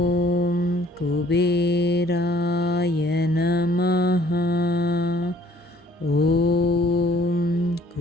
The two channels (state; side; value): normal; both; correlation 0.58